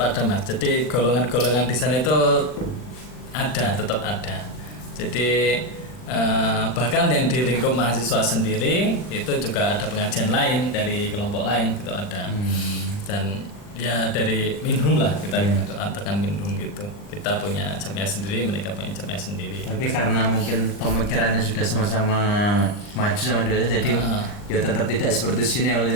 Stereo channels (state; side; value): late; right; 39 ms